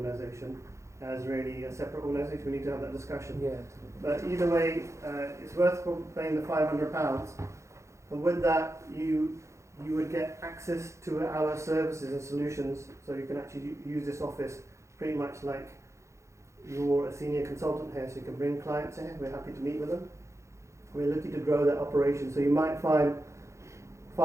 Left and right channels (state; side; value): late; left; 0.14 ms